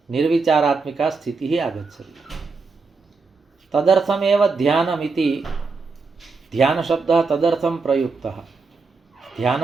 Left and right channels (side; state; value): left; quieter; 4.3 dB